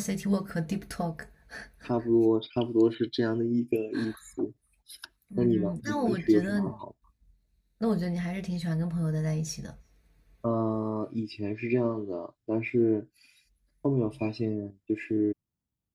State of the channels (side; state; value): both; identical; correlation 1.00